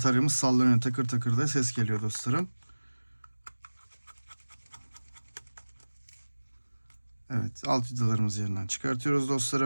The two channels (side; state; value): both; inverted; correlation -1.00